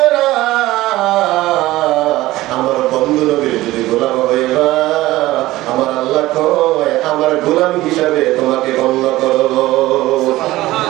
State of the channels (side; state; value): left; quieter; 17.3 dB